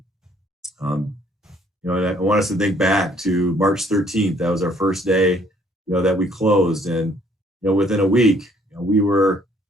And I want us to think back to March 13th. That was our first day, that we closed. And, within a week, we were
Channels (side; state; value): both; normal; correlation 0.63